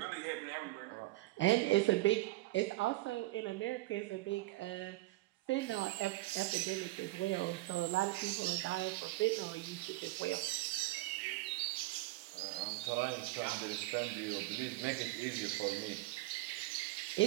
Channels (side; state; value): left; quieter; 19.4 dB